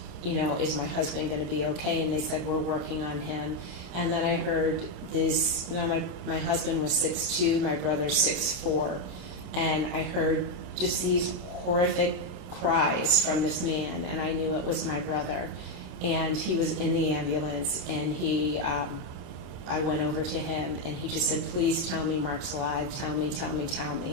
you know, is my husband going to be okay? And they said, we're working on him. And then I heard this, now my husband was 6'2", my brother 6'4", and I heard just these horrific cries from this man, and I knew it was my brother. And he was in the ambulance, and I went over to him, and he just said, please tell me Mark's alive, tell me.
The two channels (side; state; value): left; late; 28 ms